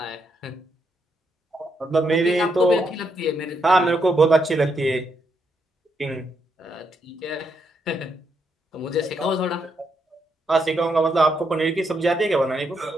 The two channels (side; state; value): both; normal; correlation 0.78